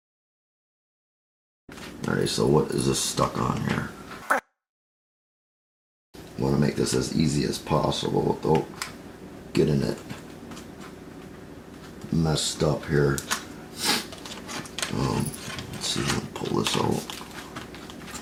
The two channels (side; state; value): both; identical; correlation 1.00